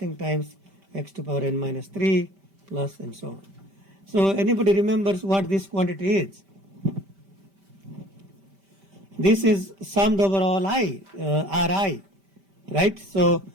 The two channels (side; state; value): left; late; 5.1 ms